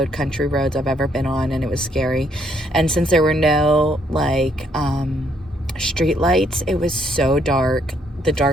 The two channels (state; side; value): normal; both; correlation 0.70